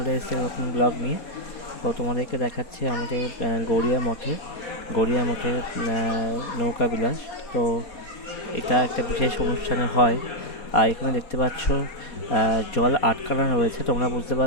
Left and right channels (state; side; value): late; right; 4.2 ms